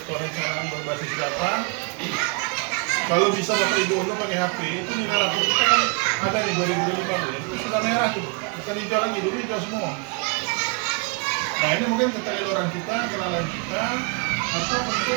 perencanaan berbasis data. Kalau bisa Bapak Ibu untuk pakai HP itu nilai rapor kita kan ada nih 2015 itu sudah merah tuh, bukan hijau lagi, dulu hijau semua. Nah ini mungkin keteledoran kita, kelalaian kita, atau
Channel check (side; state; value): left; quieter; 35.4 dB